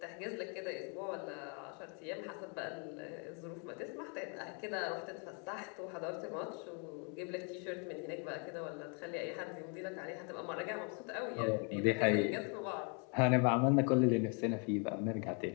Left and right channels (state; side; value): quieter; right; 37.7 dB